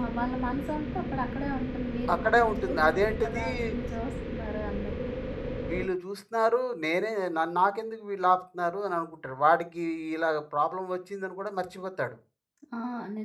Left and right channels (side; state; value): both; identical; correlation 1.00